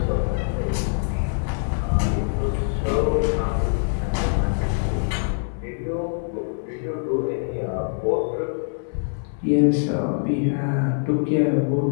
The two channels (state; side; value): silent; right; 63 dB below the other